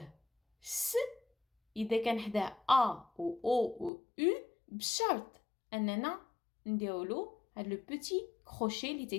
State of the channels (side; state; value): right; drops out; at 3.9 s